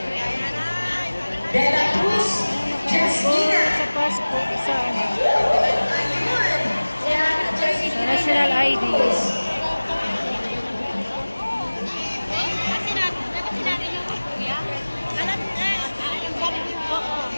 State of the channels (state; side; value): inverted; both; correlation -1.00